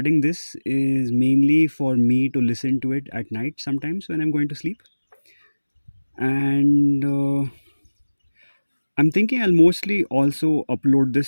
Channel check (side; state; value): both; inverted; correlation -1.00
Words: this is mainly for me to listen to it at night sometimes when I'm going to sleep. And I'm thinking I'll mostly also upload